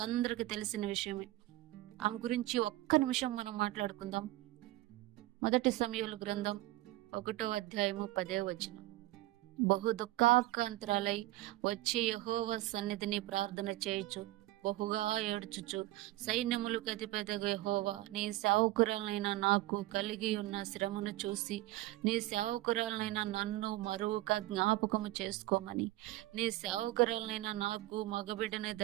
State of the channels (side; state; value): left; quieter; 17.6 dB